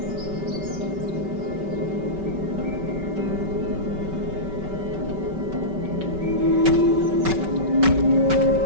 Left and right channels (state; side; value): late; left; 5.2 ms